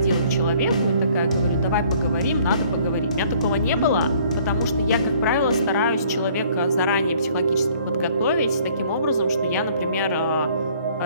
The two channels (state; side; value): inverted; both; correlation -0.58